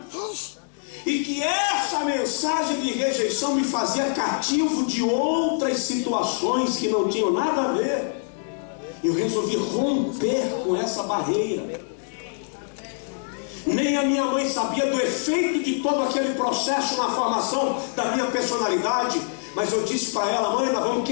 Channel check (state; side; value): silent; right; digital silence